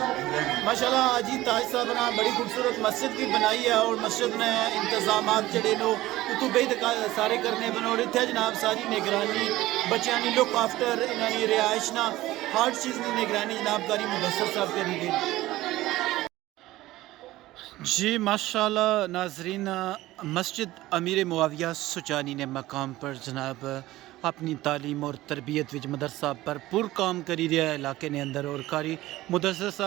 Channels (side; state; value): left; quieter; 16.9 dB